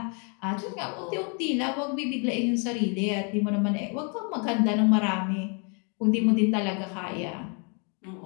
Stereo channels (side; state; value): right; quieter; 36.7 dB